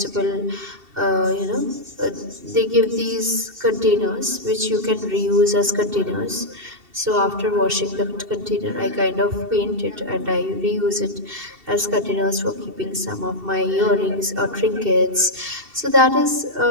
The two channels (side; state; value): left; late; 2.7 ms